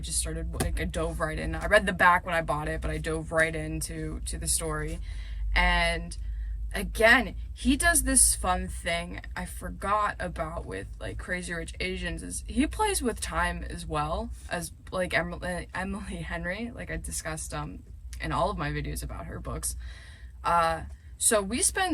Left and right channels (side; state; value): both; identical; correlation 1.00